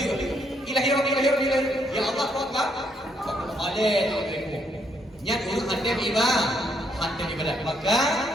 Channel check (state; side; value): normal; both; correlation 0.73